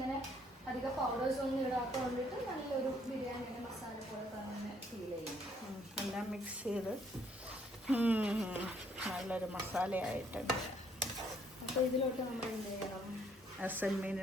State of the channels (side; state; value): both; normal; correlation 0.66